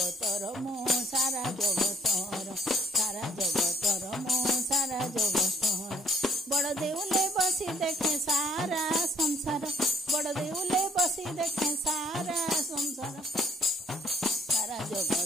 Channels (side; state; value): both; normal; correlation 0.61